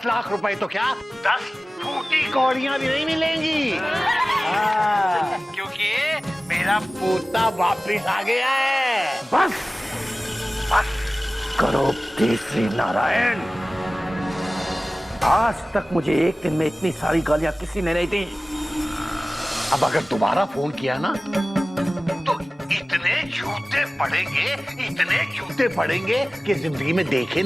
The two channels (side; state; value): both; normal; correlation 0.97